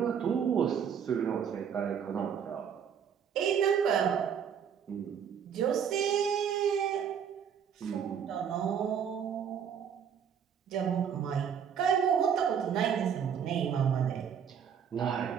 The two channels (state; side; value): quieter; left; 7.8 dB